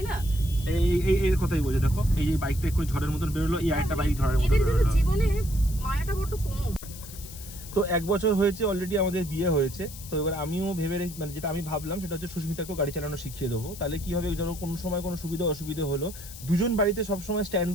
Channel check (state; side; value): noise; left; hiss, 14 dB below the sound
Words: না, এর কথাই বলছে। দেখো এই যে বাইকটা একটু ঝড়ের মতন বেরোলো, এই আরেকটা বাইক ঝড়ের মতন এদের বেরোলো। জীবনে মায়াটা বড় কম। তো 1 বছর হয়েছে অলরেডি আমাদের বিয়ে হয়েছে। তো এবার আমিও ভেবে মানে যেটা আমি ভাবলাম সেটা হচ্ছে সুস্মিতাকেও গাড়ি চালানো শিখিয়ে দেবো। তাহলে কি হবে, যেন কোনো সময় কোনো সুবিধা অসুবিধা হলো দুজন বাড়িতে সবসময় স্ট্যান্ড